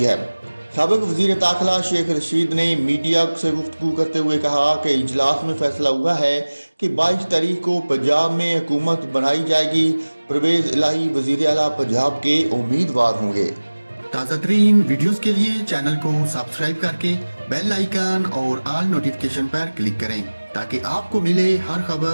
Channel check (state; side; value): inverted; both; correlation -1.00